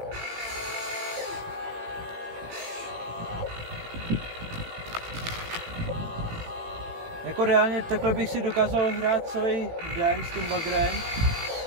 jako reálně takhle bych si dokázal hrát celý den s tím bagrem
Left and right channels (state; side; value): late; left; 18 ms